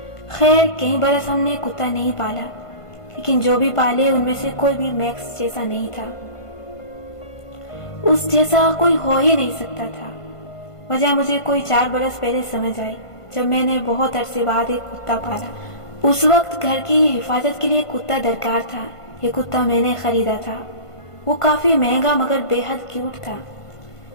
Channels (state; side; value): late; right; 1.5 ms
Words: خیر کئی برس ہم نے کتا نہیں پالا، لیکن جو بھی پالے ان میں سے کوئی بھی میکس جیسا نہیں تھا، اس جیسا کوئی ہو ہی نہیں سکتا تھا۔ وجہ مجھے کوئی 4 برس پہلے سمجھ آئی، جب میں نے بہت عرصے بعد ایک کتا پالا۔ اس وقت گھر کی حفاظت کے لیے کتا درکار تھا۔ یہ کتا میں نے خریدا تھا، وہ کافی مہنگا مگر بے حد کیوٹ تھا،